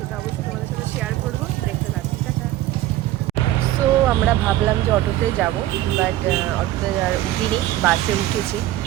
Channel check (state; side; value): quieter; left; 14.7 dB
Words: অবশ্যই তোমাদের সাথে শেয়ার করবো, দেখতে থাকি। টাটা। সো আমরা ভাবলাম যে অটোতে যাব, বাট অটোতে উঠিনি, বাসে উঠেছি।